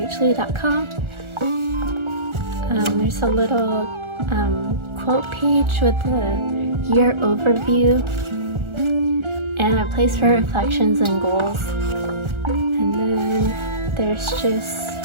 There's a little quote page with a year overview and a place for reflections and goals. And then there's just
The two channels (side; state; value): left; late; 1.4 ms